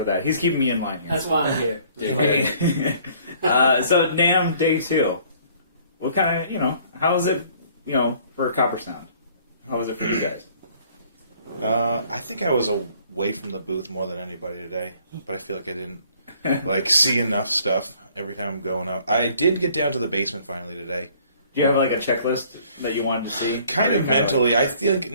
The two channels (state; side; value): inverted; both; correlation -0.58